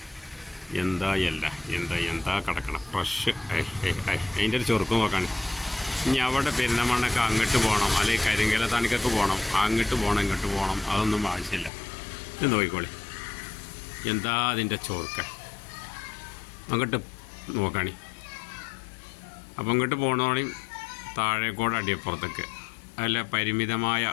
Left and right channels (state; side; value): drops out; right; at 11.7 s